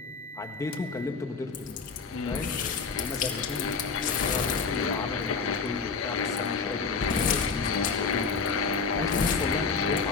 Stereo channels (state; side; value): quieter; right; 5.1 dB